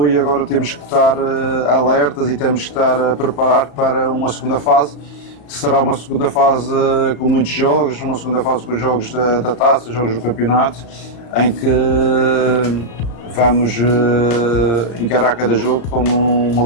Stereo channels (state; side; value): late; right; 35 ms